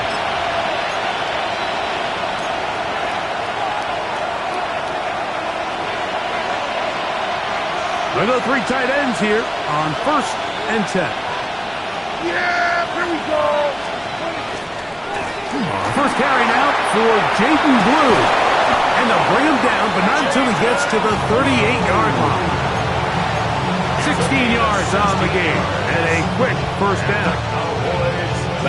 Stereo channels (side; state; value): both; identical; correlation 1.00